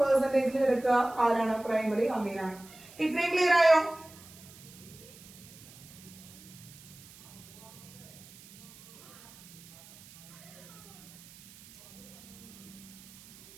എടുക്കുക ആരാണ്? പ്രൈമറി അമീനാണ്. ഇത്രയും ക്ലിയർ ആയോ?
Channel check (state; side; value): noise; right; hiss, 20 dB below the sound